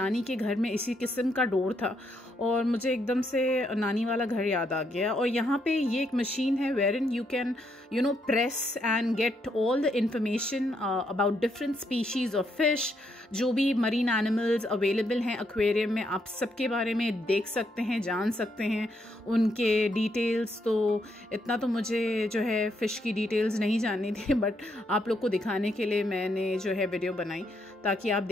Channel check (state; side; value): normal; both; correlation 0.76